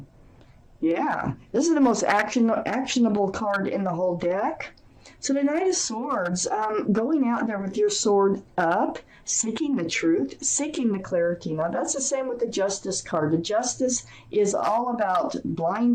Yeah, this is the most actionable card in the whole deck. So the Knight of Swords, going out there with your sword up, seeking the truth, seeking the clarity. Now that's the same with the Justice card. The Justice is all about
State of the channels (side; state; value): both; identical; correlation 1.00